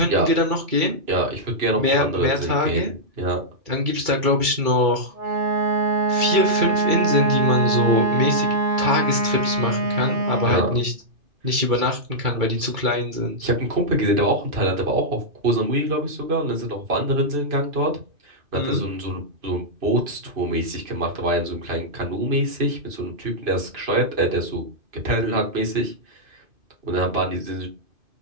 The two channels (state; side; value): late; left; 2.3 ms